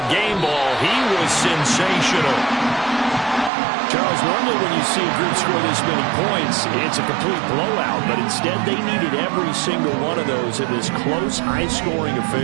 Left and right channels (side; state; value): left; drops out; at 3.5 s